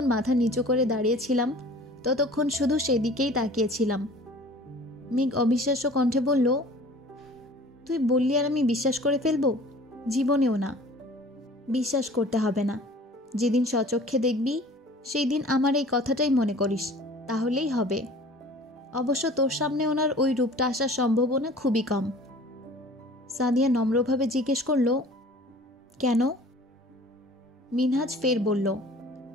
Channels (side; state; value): both; normal; correlation 0.46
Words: মাথা নিচু করে দাঁড়িয়েছিলাম ততক্ষণ শুধু সেদিকেই তাকিয়েছিলাম। মেঘ অবিশ্বাস্য কণ্ঠে বলল, তুই বললি আর আমি বিশ্বাস করে ফেলবো? জীবনেও না। বিশ্বাস করতে হবে না, যেদিন স্বচক্ষে দেখবি সেই দিন আমার এই কথাটাই মনে করিস, তাহলেই হবে। অবশ্য তোর সামনে ওনার ওই রূপটা আসার সম্ভাবনা খুবই কম। সাদিয়া নম্রভাবে জিজ্ঞেস করল, কেন? মিনহাজ ফের বলল,